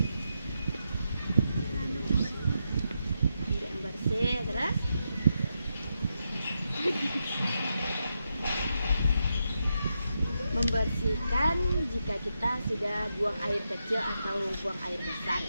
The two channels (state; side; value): inverted; both; correlation -0.84